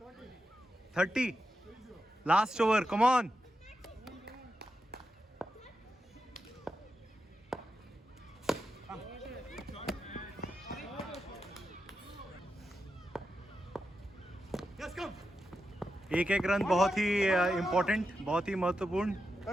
30. Last over, come on. एक एक रन बहुत ही इम्पोर्टेंट, बहुत ही महत्वपूर्ण.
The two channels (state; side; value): normal; both; correlation 0.88